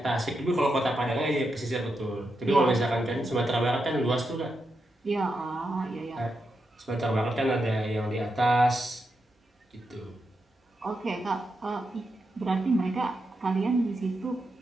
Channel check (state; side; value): normal; both; correlation 0.85